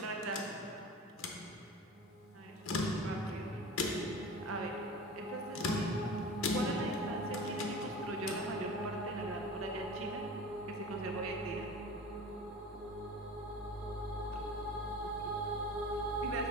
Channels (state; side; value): normal; both; correlation 0.36